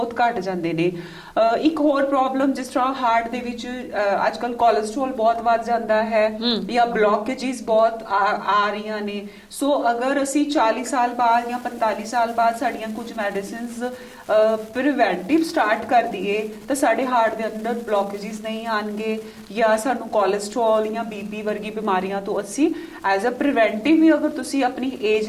ਘਟ ਜਾਂਦੇ ਨੇ। ਇੱਕ ਹੋਰ ਪ੍ਰੋਬਲਮ ਜਿਸ ਤਰ੍ਹਾਂ ਹਾਰਟ ਦੇ ਵਿੱਚ ਅੱਜਕੱਲ ਕੋਲੇਸਟ੍ਰੋਲ ਬਹੁਤ ਵੱਧ ਜਾਂਦਾ ਹੈ ਜਾਂ ਬਲੌਕੇजेस ਬਹੁਤ ਆ ਰਹੀਆਂ ਨੇ। ਸੋ ਅਗਰ ਅਸੀਂ 40 ਸਾਲ ਬਾਅਦ ਜਾਂ 45 ਸਾਲ ਬਾਅਦ ਸਾਡੀਆਂ ਕੁਝ ਮੈਡੀਸਿਨਸ ਪ੍ਰੀਵੈਂਟਿਵ ਸਟਾਰਟ ਕਰ ਦਈਏ ਤਾਂ ਸਾਡੇ ਹਾਰਟ ਦੇ ਅੰਦਰ ਬਲੌਕੇजेस ਨਹੀਂ ਆਣਗੇ ਜਾਂ ਸਾਨੂੰ ਕੋਲੇਸਟ੍ਰੋਲ ਜਾਂ ਬੀਪੀ ਵਰਗੀ ਬਿਮਾਰੀਆਂ ਤੋਂ ਅਸੀਂ ਐਜ਼ ਅ ਪ੍ਰੀਵੈਂਟਿਵ ਵੀ ਅਗਰ ਤੁਸੀਂ ਆਪਣੀ ਏਜ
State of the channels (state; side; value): identical; both; correlation 1.00